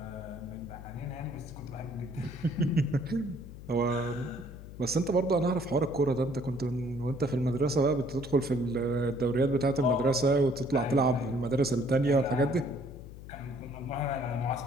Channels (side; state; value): left; noise; hum, 14 dB below the sound